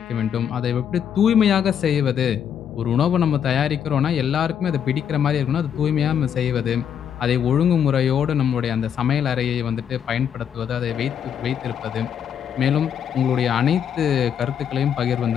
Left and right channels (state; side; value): quieter; right; 8.5 dB